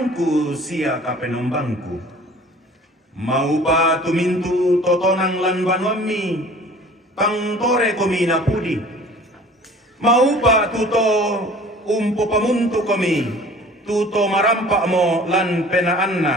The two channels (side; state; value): both; normal; correlation 0.47